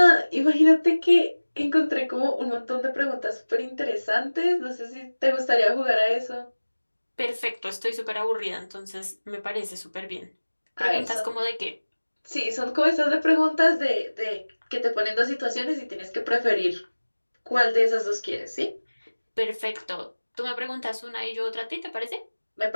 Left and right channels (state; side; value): inverted; both; correlation -1.00